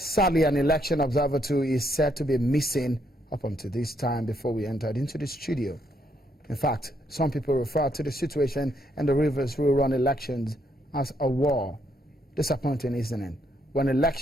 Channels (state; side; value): normal; both; correlation 0.74